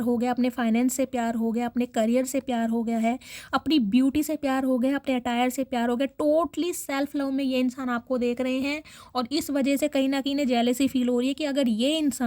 हो गया, अपने फाइनेंस से प्यार हो गया, अपने करियर से प्यार हो गया है, अपनी ब्यूटी से प्यार हो गया, अपने अटायर से प्यार हो गया। टोटली सेल्फ लव में ये इंसान आपको देख रहे हैं और इस वजह से कहीं ना कहीं जेलसी फील हो रही है कि अगर ये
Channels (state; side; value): identical; both; correlation 1.00